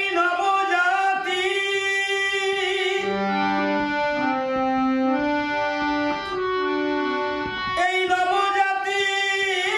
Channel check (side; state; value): both; identical; correlation 1.00